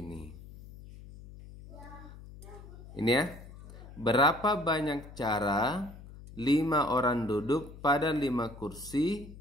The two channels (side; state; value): left; noise; hum, 16 dB below the sound